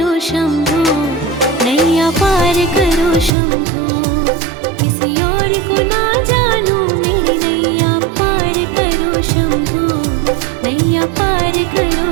शंभू, नैया पार करो शंभू। किसी और को ना जानू मेरी नैया पार करो शंभू, नैया पार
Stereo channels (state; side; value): drops out; left; at 3.3 s